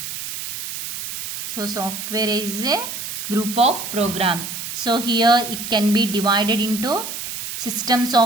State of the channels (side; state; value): right; noise; hiss, 7 dB below the sound